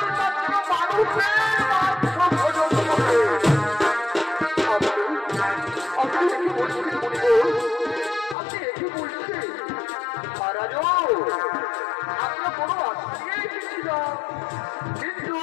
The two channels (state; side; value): drops out; right; at 8.3 s